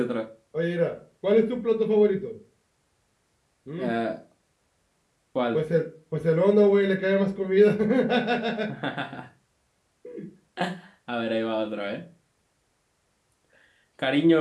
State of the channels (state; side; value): identical; both; correlation 1.00